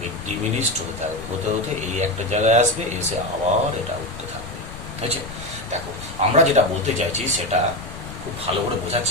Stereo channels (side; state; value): left; noise; rumble, 13 dB below the sound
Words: ডিমিনিশড হতে থাকবে, হতে হতে এই একটা জায়গায় আসবে, এসে আবার এটা উঠতে থাকবে। বুঝছে? দেখো, আমরা যেটা বলতে চাইছি সেটা খুব ভালো করে বোঝার